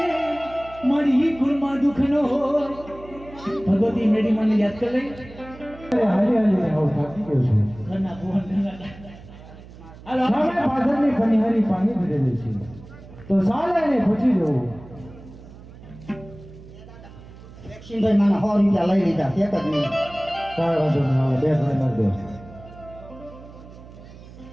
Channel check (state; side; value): noise; right; hum, 18 dB below the sound